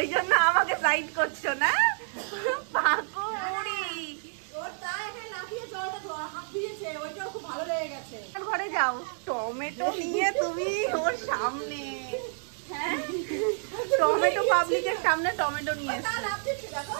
জন্য আমাকে সাইড করছো না পাকুড়ি। ঘরে যাও, টমেটো নিয়ে তুমি ওর সামনে, হ্যাঁ টমেটো পাবলিকের সামনে টমেটো নিয়ে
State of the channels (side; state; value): left; silent; digital silence